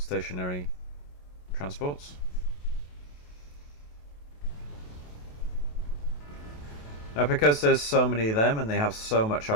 transports. Now, because there's so many of them and they have so much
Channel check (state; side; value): late; right; 28 ms